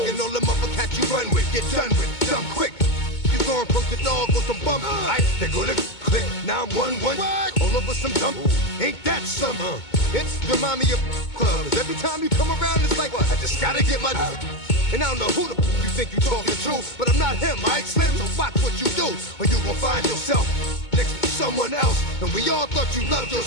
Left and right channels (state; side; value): late; right; 2.2 ms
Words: And all the motherfuckers you run with, get done with, dumb quick. You going from the dog or some bum? Alright, they go to click 911. All over some dump. Ain't that something? It remind me of clubs. Every time you come around, it's like, I just gotta get my. And I don't know who the you think you talking to, but I'm not him, alright, Slim? So watch what you do, or you gon' find yourself next to someone else. And we all thought you loved